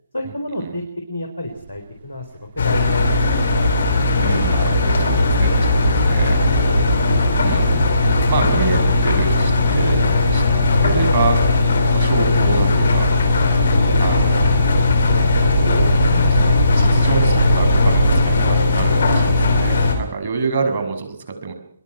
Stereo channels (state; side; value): inverted; both; correlation -0.72